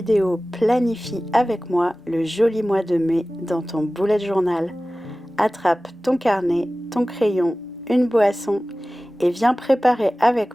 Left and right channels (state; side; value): normal; both; correlation 0.97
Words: Planifie avec moi le joli mois de mai dans ton bullet journal. Attrape ton carnet, ton crayon, une boisson et viens préparer